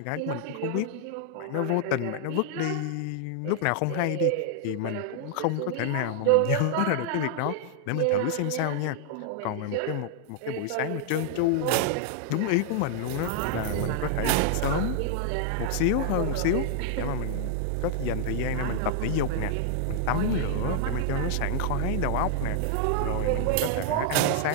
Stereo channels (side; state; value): both; different; correlation -0.01